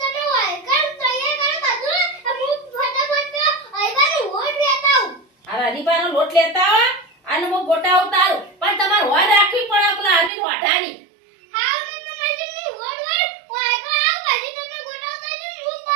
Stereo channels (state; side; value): drops out; left; at 10.3 s